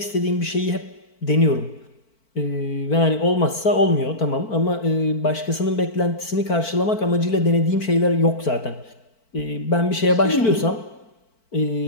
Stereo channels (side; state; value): right; late; 4.5 ms